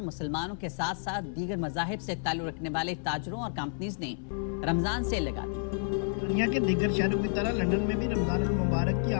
के साथ साथ दीगर मज़ाहिब से ताल्लुक़ रखने वाले ताजरों और कंपनीज ने रमजान सेल लगा दी। दुनिया के दीगर शहरों की तरह लंदन में भी रमजान मुबारक की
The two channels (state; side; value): silent; right; 57 dB below the other